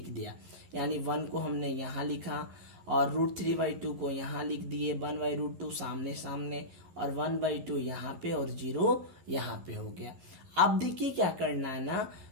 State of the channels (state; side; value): late; left; 11 ms